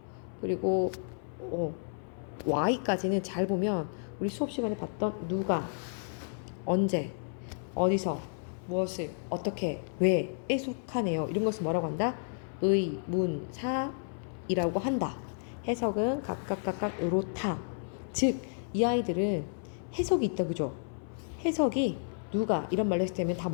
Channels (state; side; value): silent; right; 57 dB below the other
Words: 그리고 Y까지는 잘 보면 우리 수업 시간에 봤던 누가, 언제, 어디서, 무엇을, 어떻게, 왜에 속하네요. 이런 것을 뭐라고 한다? 의, 문, 사이라고 한다. 해석은 각각 요렇다. 즉, 이 아이들은 해석이 있다, 그죠? 해석이 누가 이런 말로 했을 때면 다